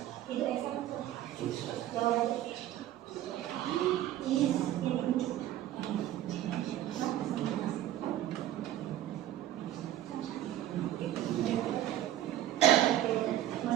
Itu Esa. Jawabannya. Is in.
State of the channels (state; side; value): quieter; left; 13.0 dB